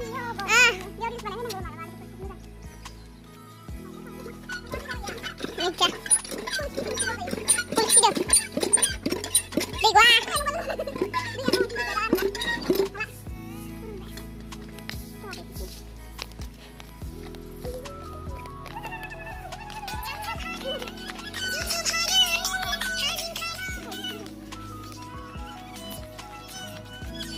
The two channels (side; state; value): both; identical; correlation 1.00